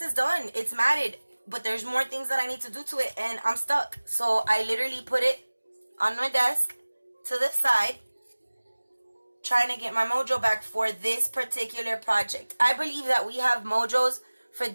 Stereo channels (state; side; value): inverted; both; correlation -1.00